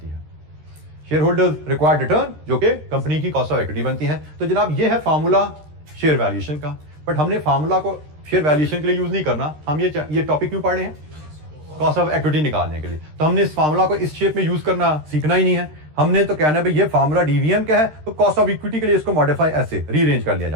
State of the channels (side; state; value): left; late; 13 ms